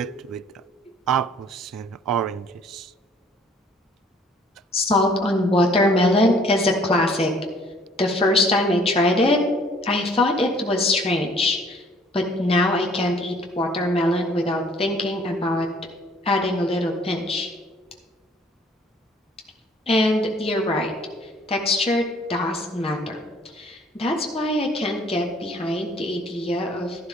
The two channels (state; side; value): normal; both; correlation 0.57